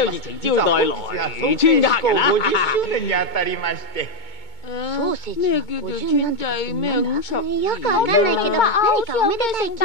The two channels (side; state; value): right; late; 2.2 ms